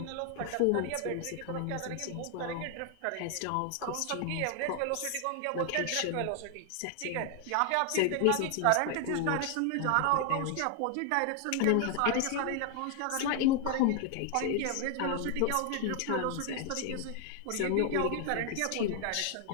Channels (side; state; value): both; different; correlation 0.00